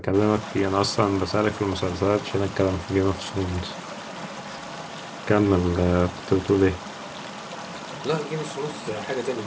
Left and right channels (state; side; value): identical; both; correlation 1.00